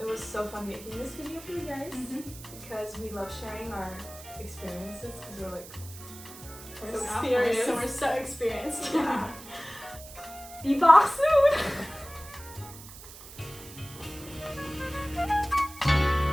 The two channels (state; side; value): noise; right; hiss, 16 dB below the sound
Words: was so fun making this video for you guys, because we love sharing our experiences, because we're like so sophomores, serious. so we're so experienced. Yeah. Be back soon.